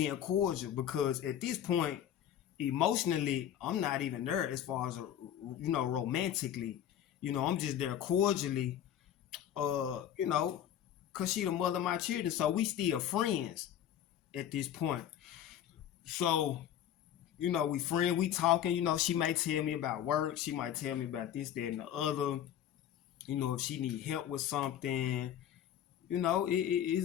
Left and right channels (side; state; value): right; quieter; 10.4 dB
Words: cordial because at this point, emotionally, I'm not even there as far as romantically. You know, I'm just there cordially. You know, cause she the mother of my children, so we still friends at this point. So you know, we friends, we talking. You know, she might tell me about work. She might tell me about this, that, and the other. You know, if she need help with something, you know,